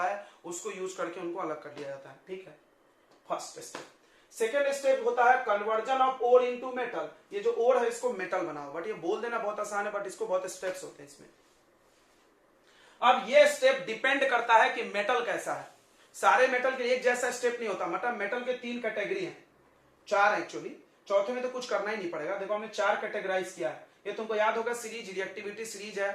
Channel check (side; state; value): both; identical; correlation 1.00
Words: उसको यूज करके उनको अलग कर लिया जाता है। ठीक है, फर्स्ट स्टेप। सेकेंड स्टेप होता है conversion of ore into metal. ये जो ओर है इसको मेटल बनाओ, बट ये बोल देना बहुत आसान है, बट इसको बहुत स्टेप्स होते हैं इसमें। अब ये स्टेप डिपेंड करता है कि मेटल कैसा है। सारे मेटल के लिए एक जैसा स्टेप नहीं होता, मतलब मेटल के 3 कैटेगरी हैं, 4 एक्चुअली, चौथे में तो कुछ करना ही नहीं पड़ेगा। देखो हमने 4 कैटेगराइज किया है, ये तुमको याद होगा, सीरीज रिएक्टिविटी सीरीज